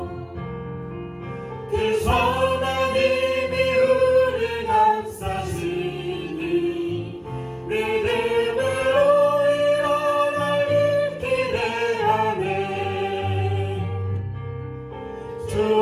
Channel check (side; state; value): both; identical; correlation 1.00